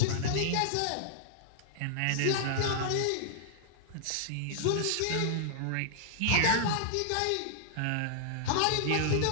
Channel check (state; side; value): different; both; correlation -0.01